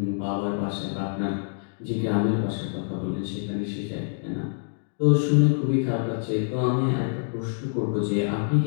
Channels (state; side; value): silent; right; digital silence